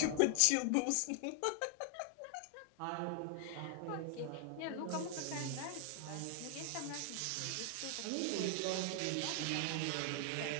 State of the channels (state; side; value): different; both; correlation 0.00